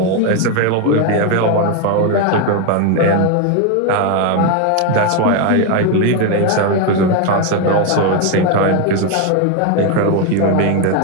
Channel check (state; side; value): different; both; correlation 0.02